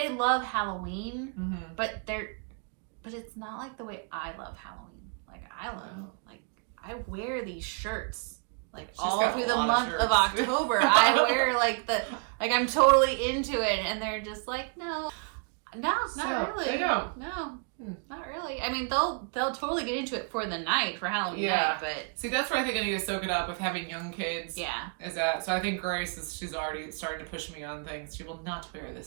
love Halloween, but it's not like the way I love Halloween. Like I wear these shirts like all through the month of October. I wear like I'm totally into it, and they're just like, no, not really. They don't. No. Not really. I mean, they'll totally get into it for the night, for Halloween night, but... See, that's where I think I need to soak it up with having young kids. Yeah. Is that... So I think Grace, she's already starting to push me on things. She will not wear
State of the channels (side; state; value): left; quieter; 39.3 dB